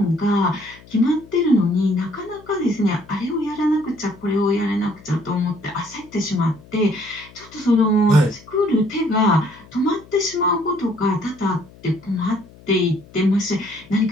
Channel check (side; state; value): left; noise; hum, 23 dB below the sound